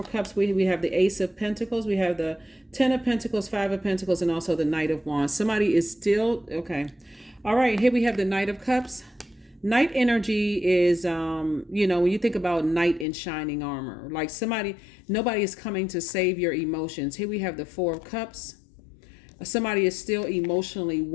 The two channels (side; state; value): right; drops out; at 13.1 s